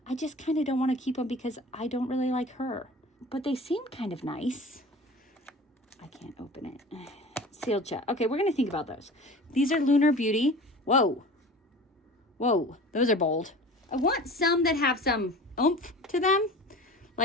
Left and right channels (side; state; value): both; normal; correlation 0.39